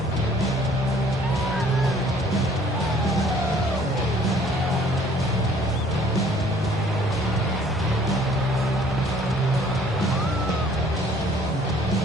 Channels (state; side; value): normal; both; correlation 0.57